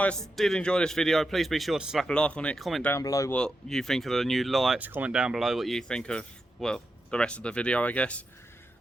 did enjoy this video, please be sure to slap a like on it, comment down below what you think of the new lights, comment down below what you think of, well, the rest of the video, I guess.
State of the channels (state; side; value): normal; both; correlation 0.87